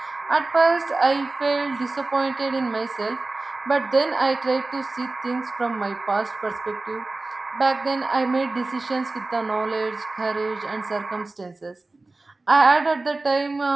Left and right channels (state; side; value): quieter; left; 3.2 dB